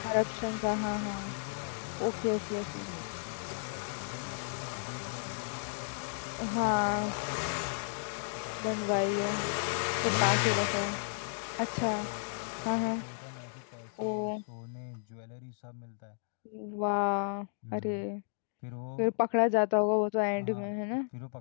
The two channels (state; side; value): silent; right; digital silence